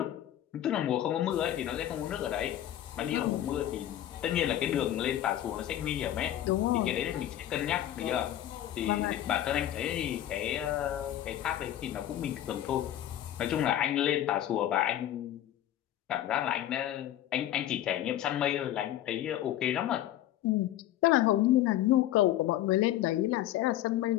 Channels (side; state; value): right; quieter; 12.6 dB